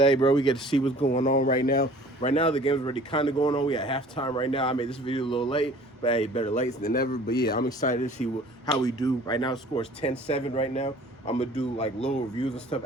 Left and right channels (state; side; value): normal; both; correlation 0.49